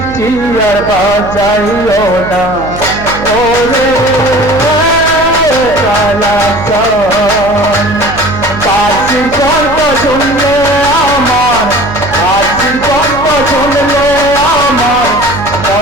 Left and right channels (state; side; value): noise; right; hum, 11 dB below the sound